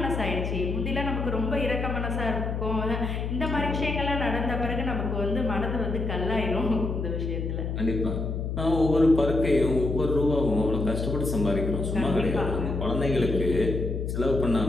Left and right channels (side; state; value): left; noise; hum, 2 dB below the sound